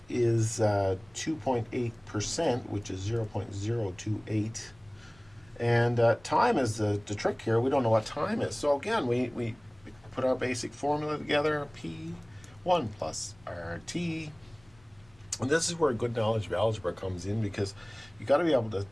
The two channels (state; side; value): noise; left; rumble, 28 dB below the sound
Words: is 2.8%, which is 0.028. And time is the trick here. We don't know what time is. So again, we put our basic formula together, P1 plus RT. And this is where good knowledge of algebra comes in, because you got to be able to